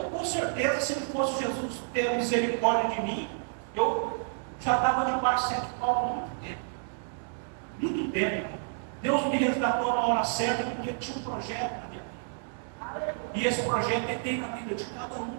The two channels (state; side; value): silent; left; digital silence